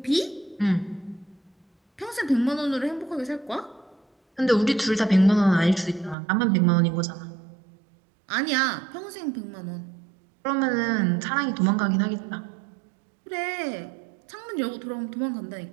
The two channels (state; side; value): drops out; left; at 6.2 s